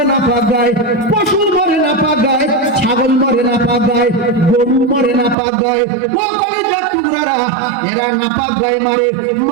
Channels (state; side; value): drops out; left; at 5.4 s